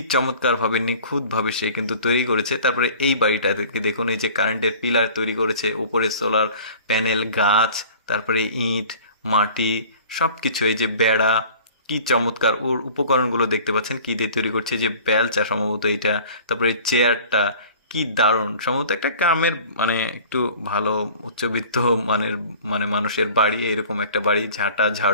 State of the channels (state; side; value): inverted; both; correlation -0.45